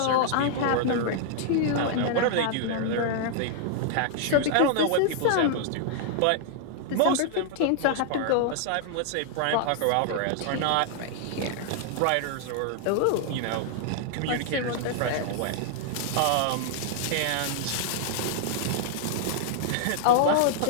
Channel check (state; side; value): different; both; correlation 0.00